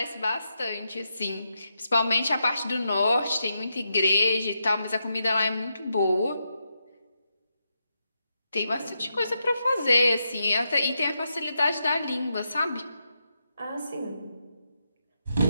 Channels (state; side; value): inverted; both; correlation -0.84